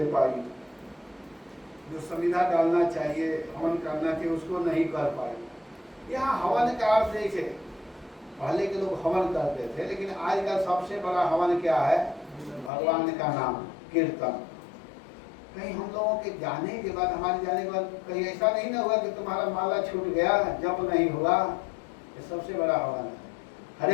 पाई, जो संविधा डालना चाहिए, हवन करना चाहिए, उसको नहीं कर पाई। यहाँ हवन का अर्थ देखे, पहले के लोग हवन करते थे, लेकिन आज का सबसे बड़ा हवन क्या है? भगवान का नाम, कीर्तन। कहीं हम लोगों के जाने के बाद, हमारे जाने के बाद कहीं ऐसा नहीं ना हुआ कि तुम्हारा माला छूट गया, जप नहीं हुआ। ये सबसे बड़ा हवन है।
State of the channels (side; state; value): right; drops out; at 12.7 s